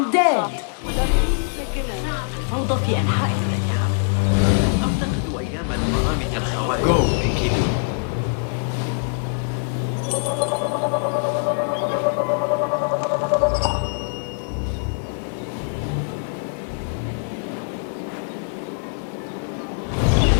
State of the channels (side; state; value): right; silent; digital silence